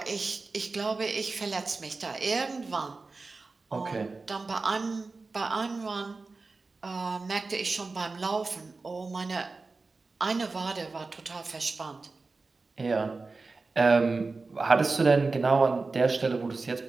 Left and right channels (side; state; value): left; quieter; 3.9 dB